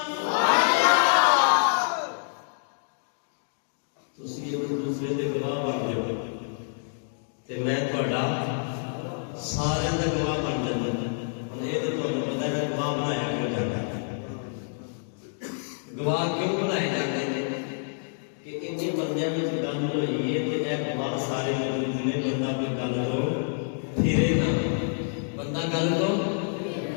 तुसी एक दूसरे के गवाह बन जाओ तो मैं थोड़ा सारे का गवाह बन जाता। हम ये तो तुम्हें पता है गवाह बनाया क्यों जाता है, गवाह क्यों बनाए जाते हैं कि इन्हीं बंदियों में गल हुई है तो यह गवाह सारे मौजूद ने। बंदा कोई गल तो फिरे ना, बंदा गल तो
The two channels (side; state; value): right; silent; digital silence